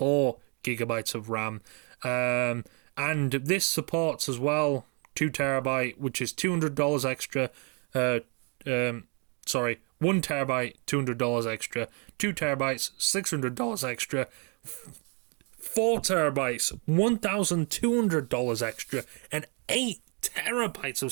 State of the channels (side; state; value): left; quieter; 36.9 dB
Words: gigabytes of RAM. And this supports as well 2 terabyte, which is $200 extra. 1 terabyte, $200 extra. 2 terabytes, $600 extra. 4 terabytes, $1,200 extra. And 8 terabytes